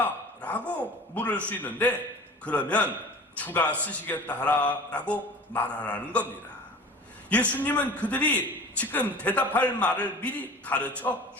라고 물을 수 있는데 그러면 주가 쓰시겠다 하라 라고 말하라는 겁니다. 예수님은 그들이 지금 대답할 말을 미리 가르쳐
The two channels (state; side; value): normal; both; correlation 0.40